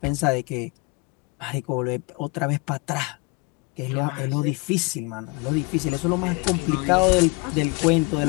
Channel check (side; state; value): right; quieter; 27.5 dB